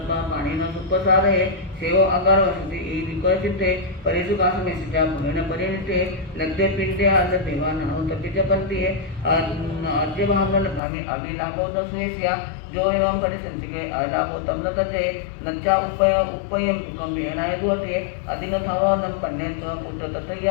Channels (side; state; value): right; drops out; at 10.8 s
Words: पानी न सुपसारे सेवो आकार वसति ई विकोय चित्ते परिसु कास में सिजा भगन परिणिते लग्गे पिंडे आद देवा नानु तपिच पंती है अद्य भावना भामी अभिलाभो दस्वेसिया जो एवं परि संचिके आलाभो तमन तते नच्चा उपयम दुकम बेनाय दुअते अदिनो थावानम पन्ने स्व पुत्र